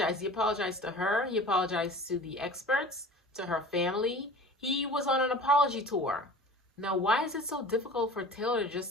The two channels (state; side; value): normal; both; correlation 0.41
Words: He apologized to her. He apologized to the experts, to her family. He was on an apology tour. Now, why is it so difficult for Taylor to